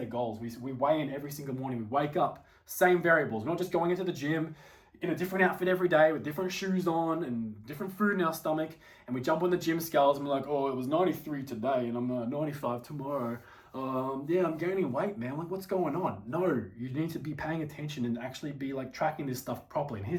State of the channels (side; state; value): both; identical; correlation 1.00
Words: goals. We weigh in every single morning. We wake up, same variables. We're not just going into the gym in a different outfit every day with different shoes on and different food in our stomach. And we jump on the gym scales and we're like, oh, it was 93 today and I'm 95 tomorrow. Yeah, I'm gaining weight, man. Like, what's going on? No, you need to be paying attention and actually be like tracking this stuff properly. And